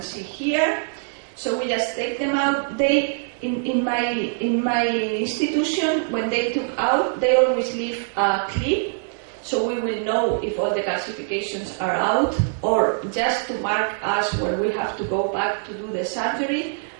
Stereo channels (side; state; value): left; silent; digital silence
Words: see here. So we just take them out. They, in my institution, when they took out, they always leave a clip, so we will know if all the calcifications are out, or just to mark us when we have to go back to do the surgery.